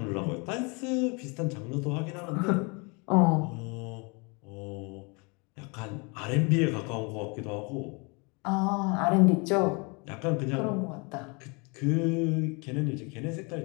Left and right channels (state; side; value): quieter; right; 30.9 dB